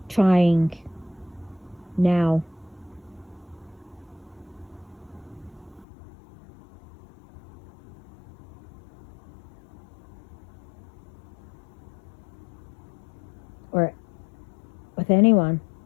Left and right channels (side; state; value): right; drops out; at 5.9 s